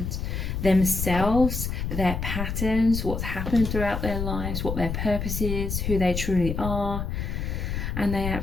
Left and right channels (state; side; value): noise; left; rumble, 3 dB below the sound